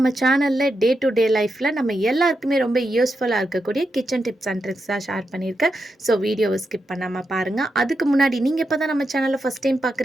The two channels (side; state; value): both; normal; correlation 0.86